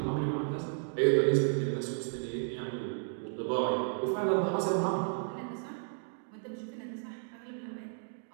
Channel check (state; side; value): silent; left; digital silence